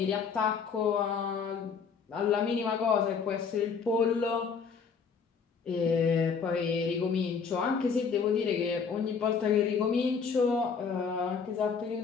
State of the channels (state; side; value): quieter; right; 5.8 dB